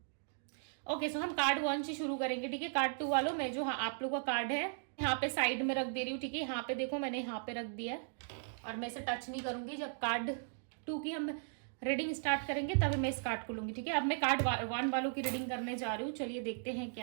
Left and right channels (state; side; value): silent; left; digital silence